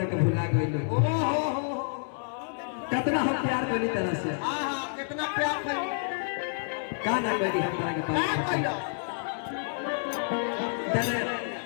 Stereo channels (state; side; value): silent; right; 59 dB below the other